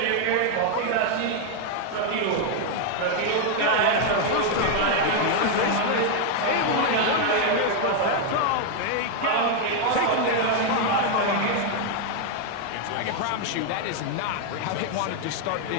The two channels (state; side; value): different; both; correlation 0.00